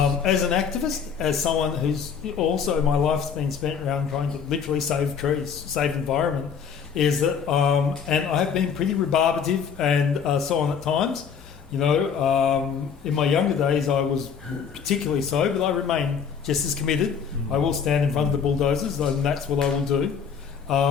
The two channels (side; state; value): right; quieter; 6.9 dB